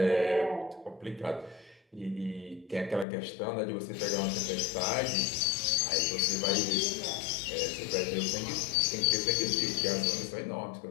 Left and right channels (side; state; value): right; drops out; at 3.1 s